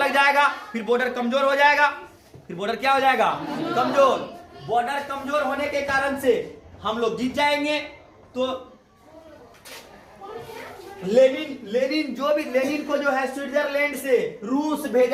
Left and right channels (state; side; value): identical; both; correlation 1.00